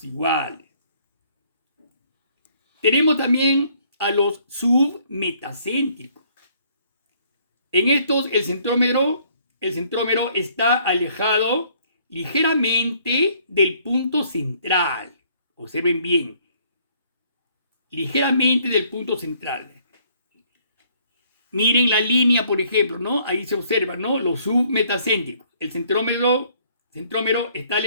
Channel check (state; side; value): inverted; both; correlation -0.63